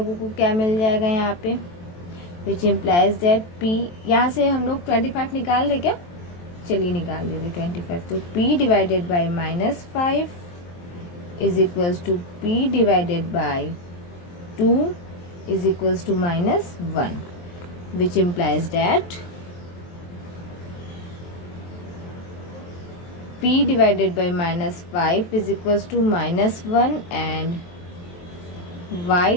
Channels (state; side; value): late; right; 23 ms